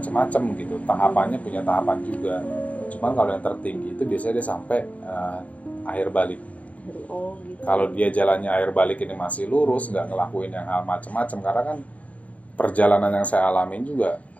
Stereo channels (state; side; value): late; right; 0.069 ms